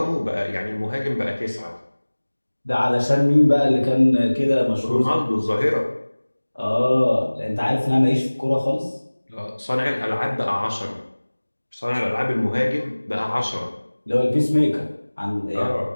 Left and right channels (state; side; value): inverted; both; correlation -1.00